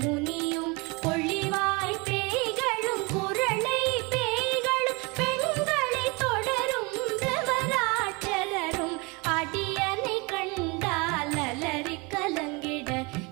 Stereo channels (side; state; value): left; quieter; 27.6 dB